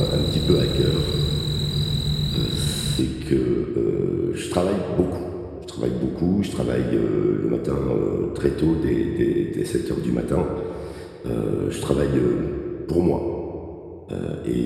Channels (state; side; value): identical; both; correlation 1.00